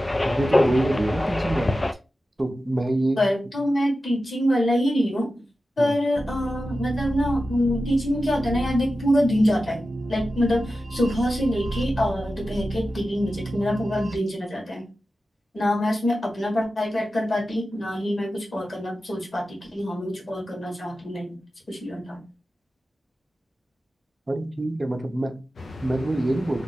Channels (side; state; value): both; normal; correlation 0.93